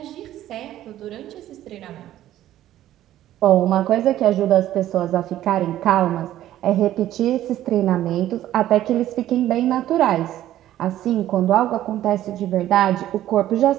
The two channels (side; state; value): left; quieter; 13.1 dB